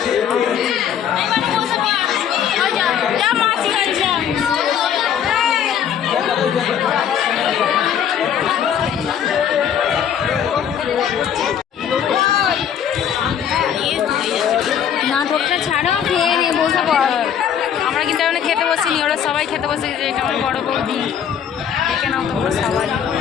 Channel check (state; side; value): quieter; right; 8.8 dB